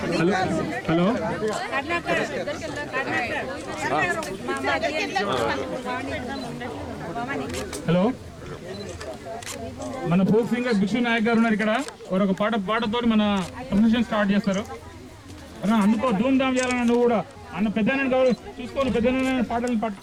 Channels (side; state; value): both; identical; correlation 1.00